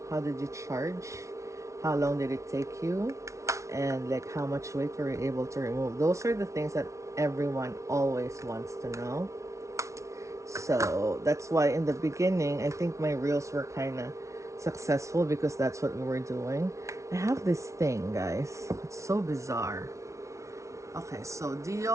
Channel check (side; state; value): left; late; 0.14 ms